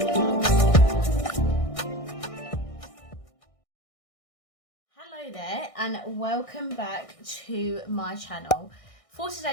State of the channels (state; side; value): late; right; 1.6 ms